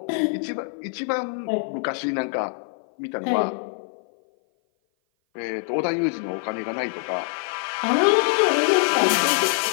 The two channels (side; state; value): right; silent; 57 dB below the other